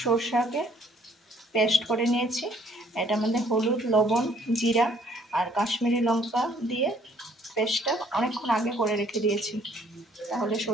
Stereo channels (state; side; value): normal; both; correlation 0.62